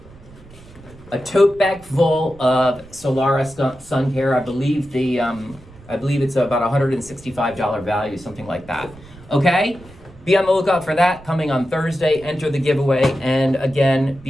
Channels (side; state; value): right; noise; rumble, 22 dB below the sound